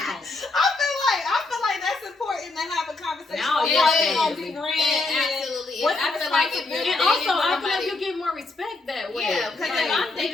I feel like that's important to have a conversation. Now, absolutely. I feel like if you're and also I feel like you get more respect that way. Yeah, because if I'm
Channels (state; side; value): quieter; right; 3.4 dB